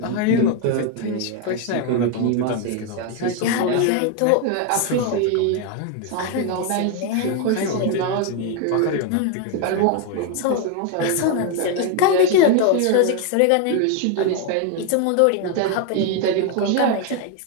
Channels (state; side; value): different; both; correlation 0.01